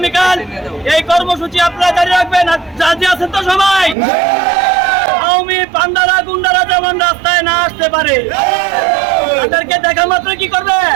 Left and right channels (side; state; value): left; drops out; at 4.0 s